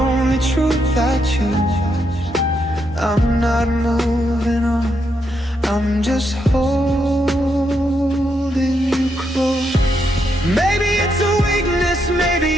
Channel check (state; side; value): normal; both; correlation 0.79